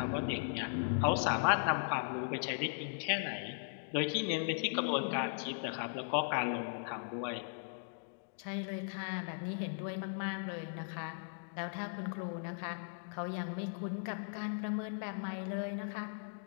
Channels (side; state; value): right; silent; digital silence